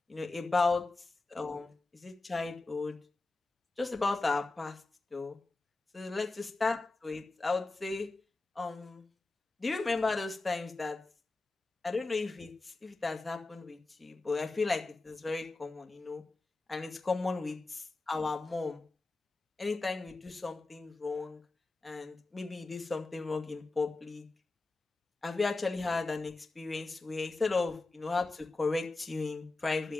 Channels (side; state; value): right; quieter; 3.3 dB